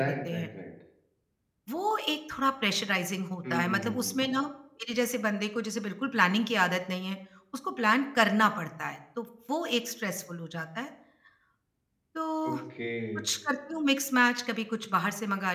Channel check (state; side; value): identical; both; correlation 1.00